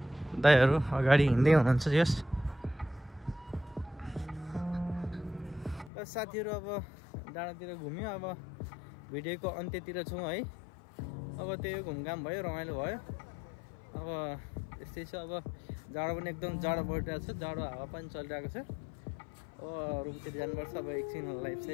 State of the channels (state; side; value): drops out; right; at 5.9 s